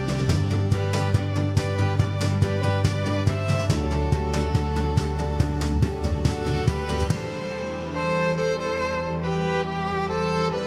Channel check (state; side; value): identical; both; correlation 1.00